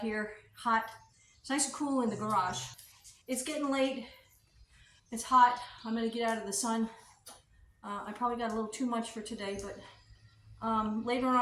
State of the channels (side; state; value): both; identical; correlation 1.00